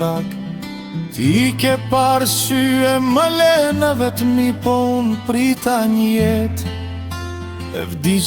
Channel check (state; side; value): identical; both; correlation 1.00